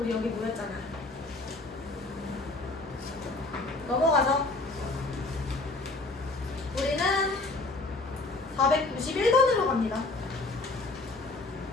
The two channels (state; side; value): quieter; right; 3.2 dB